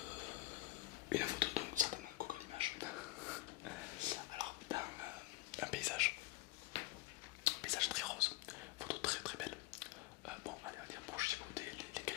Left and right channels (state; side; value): quieter; right; 16.9 dB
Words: donc certainement Google Images. Alors dans un paysage très rose, photo très très belle. Bon, allez, on dire pour chipoter les